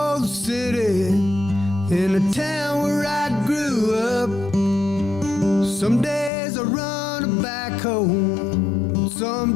the city in a town where I grew up. Some days I run a backhoe,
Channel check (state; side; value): drops out; right; at 6.3 s